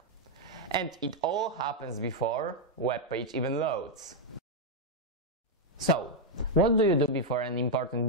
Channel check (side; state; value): both; normal; correlation -0.02